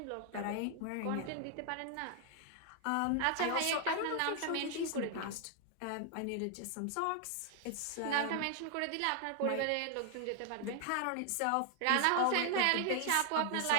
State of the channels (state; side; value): different; both; correlation 0.00